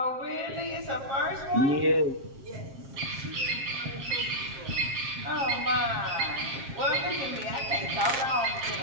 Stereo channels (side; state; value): left; late; 7.4 ms